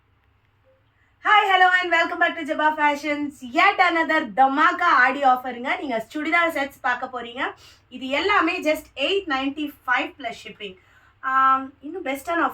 Hi hello and welcome back to Jaba fashions. yet another தமாகா ஆடி ஆஃபருங்க. நீங்கள் சுடிதார் செட்ஸ் பார்க்க போகிறீங்க. இது எல்லாமே ஜஸ்ட் 895 ப்ளஸ் ஷிப்பிங். இன்னும் பெஸ்ட்டான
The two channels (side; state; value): both; identical; correlation 1.00